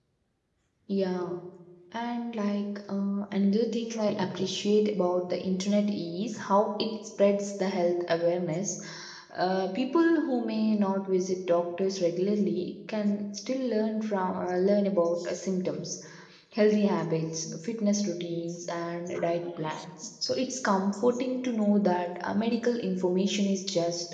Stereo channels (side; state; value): both; identical; correlation 1.00